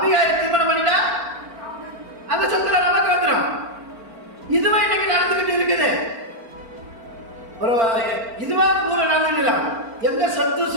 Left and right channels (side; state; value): left; late; 4.4 ms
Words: திருமணம் பண்ணிட்டா அந்த சொத்துல நமக்கு வந்துடும். இதுவே இன்னைக்கு நடந்துகிட்டு இருக்குது. ஒரு இதுவா ஊர நடந்துடல, எந்த சொத்து